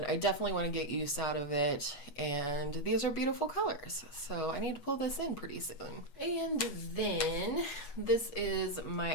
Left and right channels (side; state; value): right; late; 8.2 ms